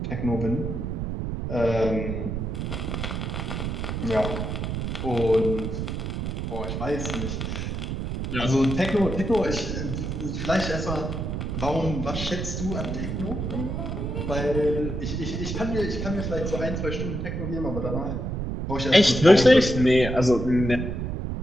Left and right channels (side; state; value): right; noise; rumble, 3 dB below the sound